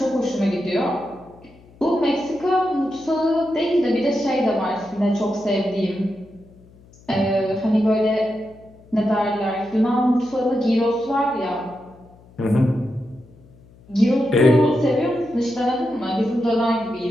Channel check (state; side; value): noise; left; hum, 26 dB below the sound